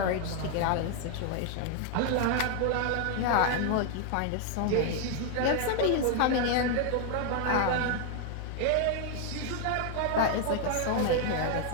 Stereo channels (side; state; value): both; different; correlation 0.00